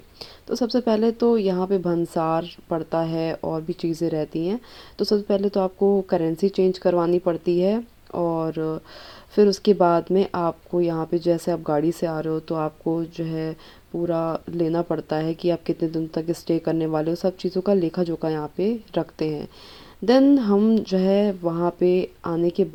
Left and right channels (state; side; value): identical; both; correlation 1.00